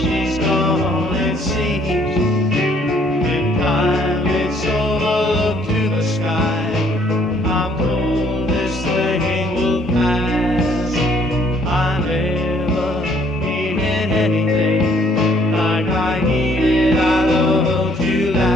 gone, it seems. In time it's over, look to the sky. I'm told this thing will pass. I never needed anything like I needed our love to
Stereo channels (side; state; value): both; normal; correlation 0.63